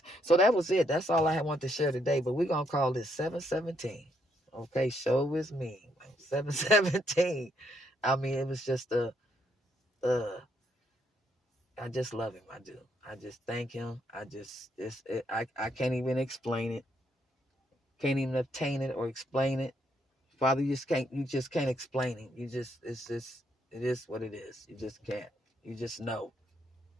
So that was it. That's all I wanted to share today, but we're going to call this 717. Okay, show is me. 717. I mean, it was just uh I just love him. I do. I just thank him. I can't even explain it. Can't even obtain it or explain it. Father, you just can't explain it. It is what it is. You just can't. You just know.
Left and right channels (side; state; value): both; normal; correlation 0.74